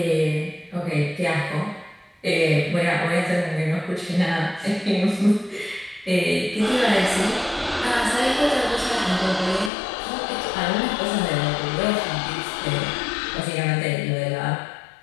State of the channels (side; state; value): right; drops out; at 9.7 s